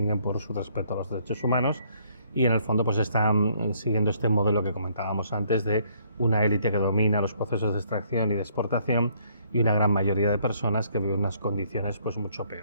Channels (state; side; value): inverted; both; correlation -0.65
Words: por su respeto a los derechos humanos, y en el fondo pues están siguiendo este modelo que comentábamos antes, de una élite que domina los procesos de extracción y de exportación, y una gran mayoría de personas que viven unas condiciones pues mucho